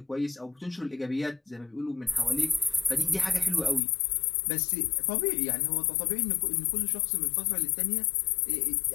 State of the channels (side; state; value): right; drops out; at 3.8 s